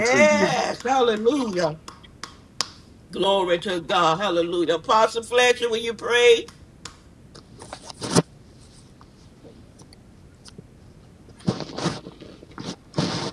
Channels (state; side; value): identical; both; correlation 1.00